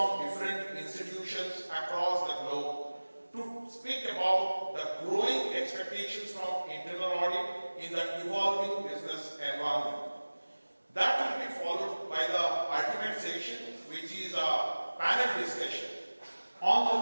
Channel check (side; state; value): both; inverted; correlation -1.00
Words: different institutions across the globe to speak about the growing expectations from internal audit in the evolving business environment. That will be followed by the ultimate session which is a panel discussion